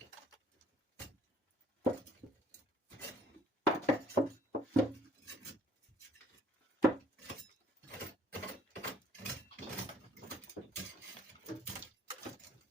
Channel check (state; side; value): normal; both; correlation 0.60